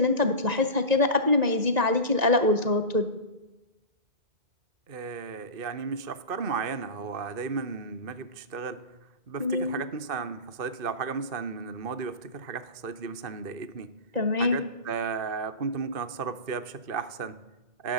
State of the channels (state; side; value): late; left; 2.5 ms